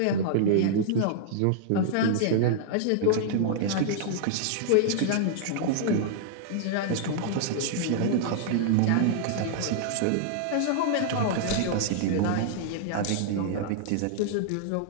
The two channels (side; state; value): both; different; correlation -0.01